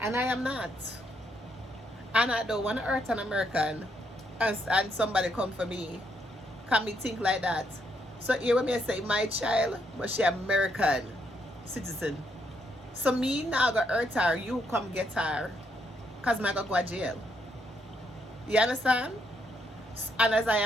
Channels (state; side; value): normal; both; correlation 0.75